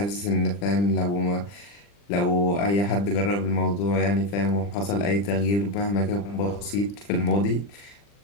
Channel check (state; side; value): late; right; 40 ms